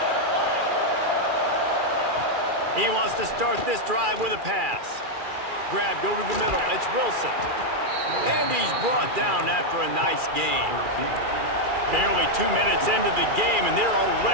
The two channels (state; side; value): late; left; 2.4 ms